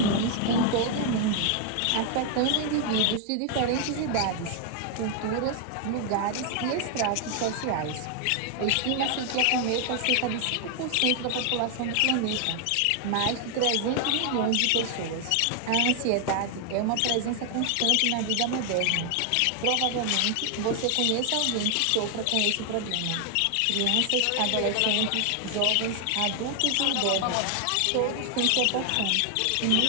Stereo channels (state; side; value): different; both; correlation 0.00